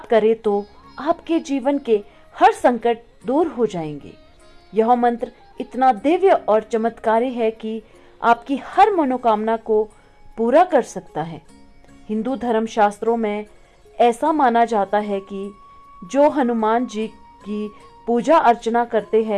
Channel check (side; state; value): both; identical; correlation 1.00